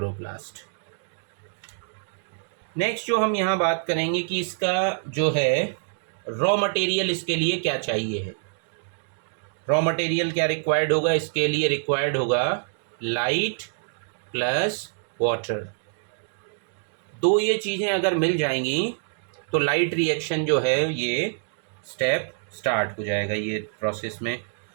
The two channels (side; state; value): left; silent; digital silence